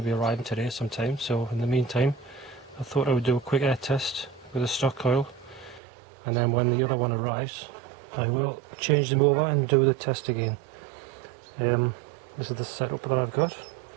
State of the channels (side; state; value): left; drops out; at 5.8 s